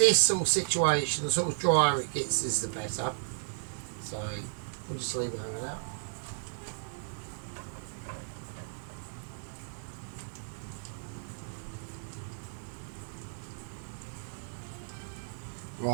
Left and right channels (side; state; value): left; silent; 55 dB below the other